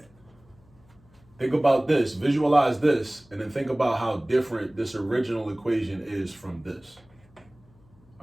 Think about this, visualize this, and then think about how different this original equation is from this.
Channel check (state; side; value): noise; left; hum, 29 dB below the sound